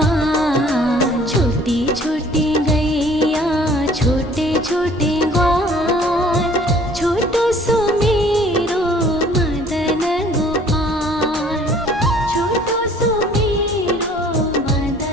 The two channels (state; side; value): normal; both; correlation 0.54